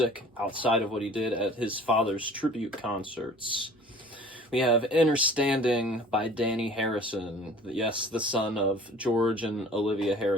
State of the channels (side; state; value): both; normal; correlation 0.48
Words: outside of what he did at his father's tribute concerts. We have Understanding by Danny Harrison. Yes, the son of George and Olivia